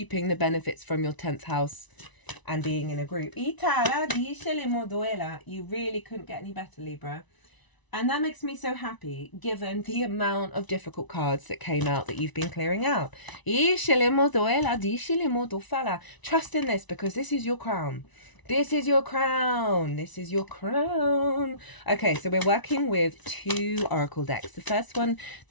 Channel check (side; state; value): right; late; 1.0 ms